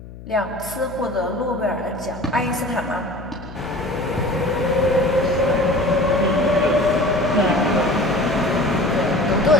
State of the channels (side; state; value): left; noise; hum, 16 dB below the sound